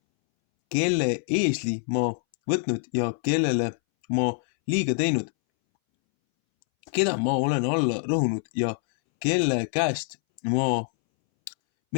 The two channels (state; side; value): silent; right; 62 dB below the other